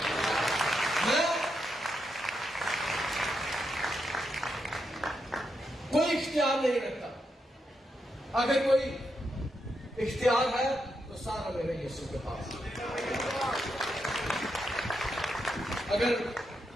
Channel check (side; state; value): both; normal; correlation 0.83